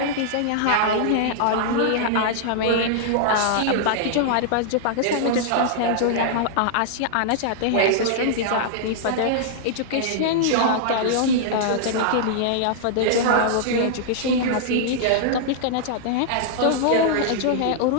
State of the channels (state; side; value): different; both; correlation -0.01